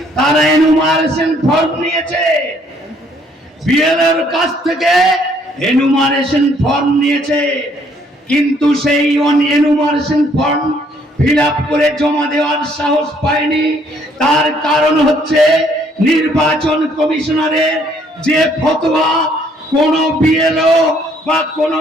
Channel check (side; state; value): both; normal; correlation 0.65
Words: তারা এনুমারেশন ফর্ম নিয়েছে, বিএলওর কাছ থেকে এনুমারেশন ফর্ম নিয়েছে, কিন্তু সেই এনুমারেশন ফর্ম ফিল আপ করে জমা দেওয়ার সাহস পায়নি। তার কারণ হচ্ছে নির্বাচন কমিশনারের যে ফতোয়া, কোন বিএলও বা কোন